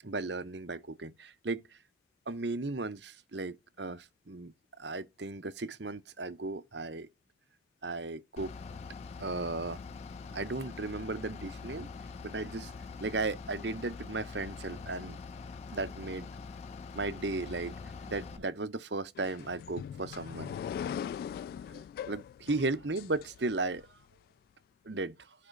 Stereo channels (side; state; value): both; normal; correlation 0.11